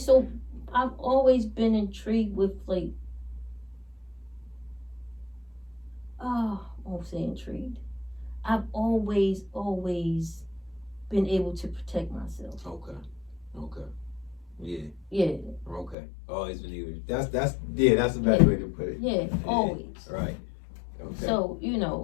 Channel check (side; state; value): right; drops out; at 16.0 s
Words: I've always been intrigued with, like, I won't say intrigued. I've always been able to protect myself. Okay. Yeah. Yeah. Okay. Always been able. That's the best way to put it. Yeah, always. Right. Okay. So, you